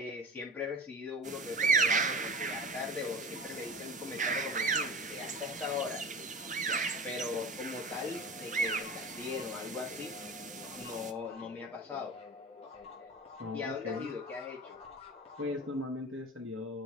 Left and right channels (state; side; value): normal; both; correlation 0.34